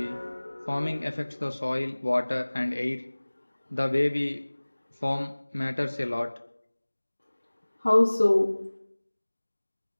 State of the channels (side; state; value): both; inverted; correlation -1.00